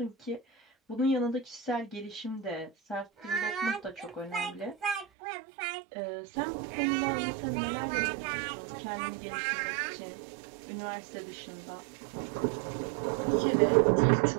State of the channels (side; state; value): left; drops out; at 5.1 s